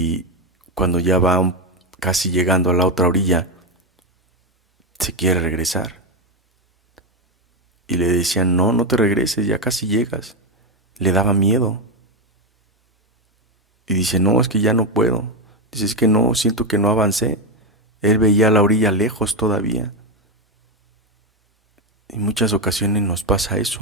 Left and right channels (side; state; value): both; normal; correlation 0.07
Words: cuando ya va casi llegando a la otra orilla, se quiere regresar. Y le decían, no, no te regreses, ya casi llegas. Le daba miedo. Y dice, no, es que ya no puedo. Dice, es que no, siento que no avancé. Él veía la orilla lejos todavía. En muchas ocasiones nos pasa